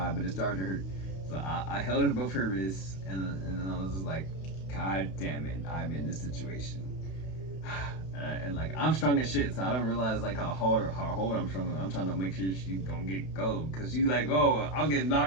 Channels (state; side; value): late; right; 32 ms